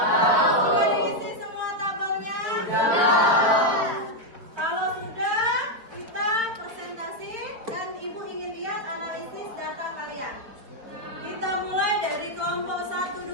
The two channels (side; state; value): left; late; 4.7 ms